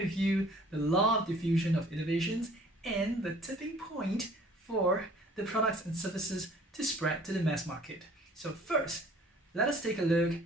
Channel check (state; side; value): normal; both; correlation 0.53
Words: you the law of diffusion of innovations and the tipping point for the products and services to spread to the mass market. So first, let us take a look